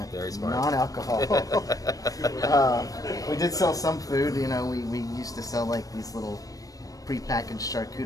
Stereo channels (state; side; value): late; right; 0.17 ms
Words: non-alcohol. We did sell some food. We used to sell like these little prepackaged